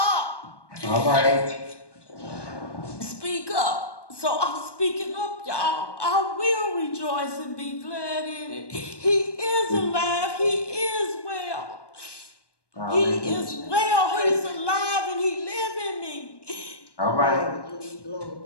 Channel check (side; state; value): right; late; 1.2 ms